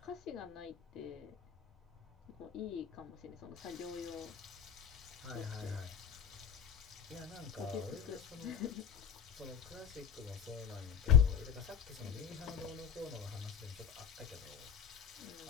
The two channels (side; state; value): right; quieter; 8.0 dB